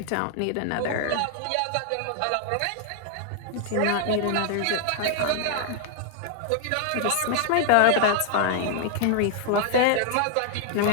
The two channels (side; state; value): both; different; correlation 0.00